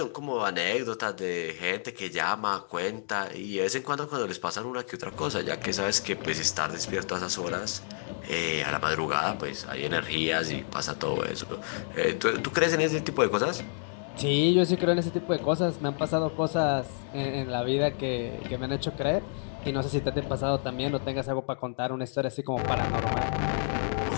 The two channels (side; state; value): right; silent; 58 dB below the other